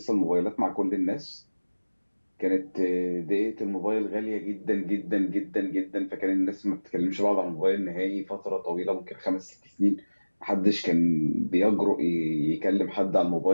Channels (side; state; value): both; inverted; correlation -1.00